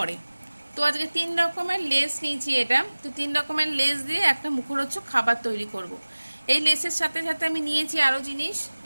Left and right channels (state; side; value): inverted; both; correlation -1.00